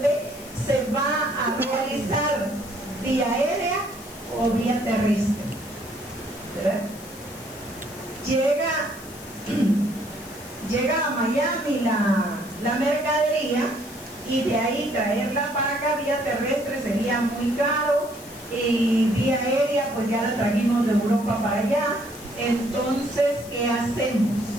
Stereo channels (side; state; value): left; noise; hiss, 18 dB below the sound